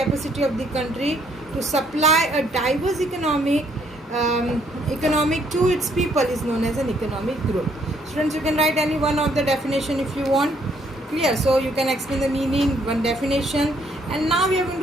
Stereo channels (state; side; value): normal; both; correlation 0.68